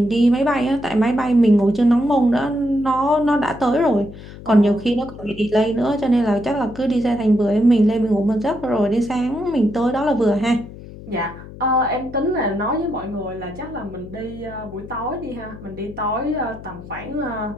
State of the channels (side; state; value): left; noise; hum, 15 dB below the sound